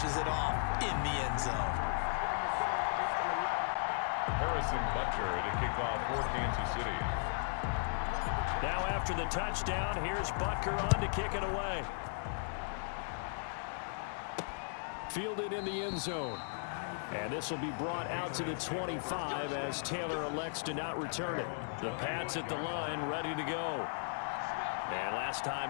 it off in the end zone. Harrison Butker to kick off for Kansas City. Now after the touchdown, here's Butker on to kick it away. Fielded in the end zone. And this will be brought out to the 25 as Taylor elects to not return it. The Pats at the line, ready to go. And last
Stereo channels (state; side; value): silent; right; digital silence